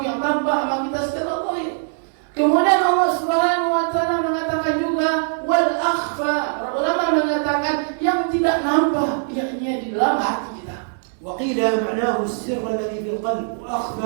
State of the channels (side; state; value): left; silent; digital silence